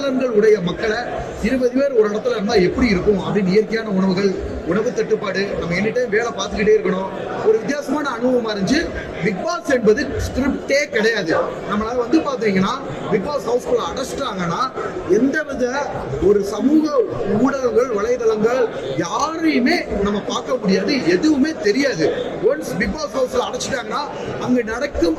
உடைய மக்களை 20 பேர் ஒரு இடத்துல இருந்தா எப்படி இருக்கும் அப்படின்னு இயற்கையான உணவுகள், உணவு தட்டுப்பாடு, நம்ம எனி டைம் வேலை பார்த்துக்கிட்டே இருக்கணும். ஒரு வித்தியாசமான அனுபவமா இருந்துச்சு. பிக் பாஸ் என்பது ஸ்கிரிப்டே கிடையாது. நம்மளால வந்து பாத்தீங்கன்னா பிக் பாஸ் ஹவுஸ்குள்ள அடைச்சிட்டாங்கன்னா எந்தவித ஒரு சமூக ஊடகங்கள், வலைதளங்கள் யாரையுமே நம்ம பார்க்க முடியாது, எதுவுமே தெரியாது. ஒன்ஸ் பிக் பாஸ் ஹவுஸ்ல அடைச்சிட்டாங்கன்னா அங்க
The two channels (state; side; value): identical; both; correlation 1.00